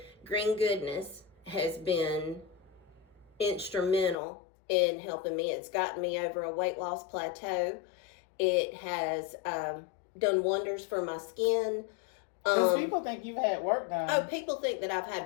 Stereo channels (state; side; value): drops out; right; at 4.2 s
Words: Green Goodness has been instrumental in helping me. It's gotten me over a weight loss plateau. It has done wonders for my skin. Because people think you've had work done. Oh, people think that I've had